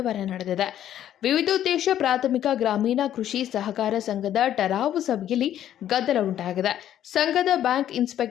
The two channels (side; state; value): right; quieter; 11.2 dB